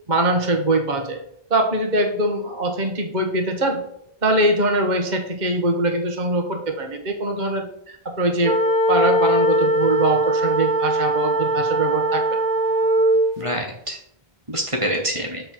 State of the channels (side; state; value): left; late; 1.5 ms